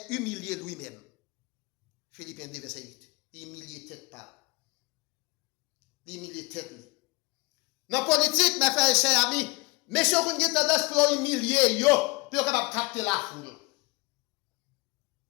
humilié lui-même. Philippiens 2, verset 8. Humilié tête par. Humilié tête. Dans la politique, mes frères et chers amis, messieurs, vous avez tendance pour humilier, pour capable capter la foule.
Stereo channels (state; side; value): quieter; right; 26.0 dB